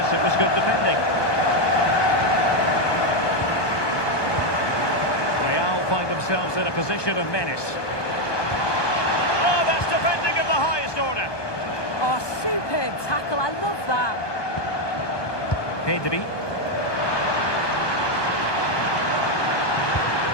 it was good defending. Find themselves in a position of menace. Oh, that's defending of the highest order. Oh, superb tackle. I love that. Pedri.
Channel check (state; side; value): late; right; 1.2 ms